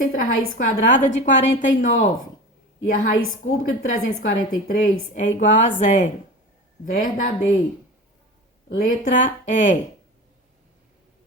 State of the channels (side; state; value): both; normal; correlation 0.32